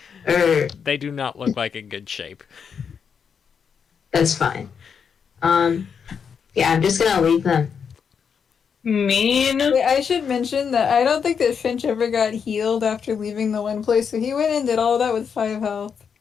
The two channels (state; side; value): quieter; right; 6.7 dB